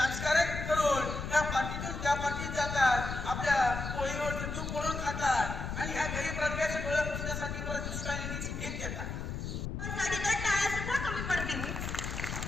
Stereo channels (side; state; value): left; noise; rumble, 5 dB below the sound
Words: करून त्या पार्टीतून त्या पार्टीत जातात, आपल्या पोळीवर तूप पडून खातात आणि ह्या गरीब प्रजेचे डोळे पुसण्यासाठी परत दुसऱ्या निधीची भीक देतात. टाळ्या सुद्धा कमी पडतील.